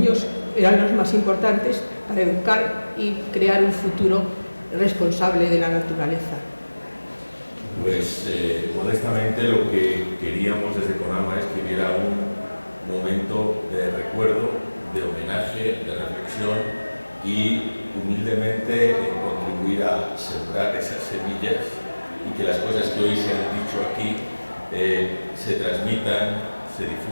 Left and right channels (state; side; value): inverted; both; correlation -1.00